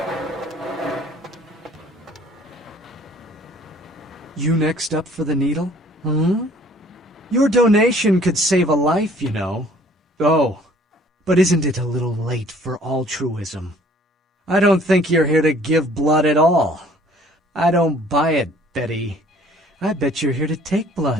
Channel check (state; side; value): normal; both; correlation 0.56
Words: You next up for the needle? Your donation could save a life, you know. Oh, but isn't it a little late for altruism? I don't think you're here to give blood at all. I don't buy it, Betty. I bet you're here to take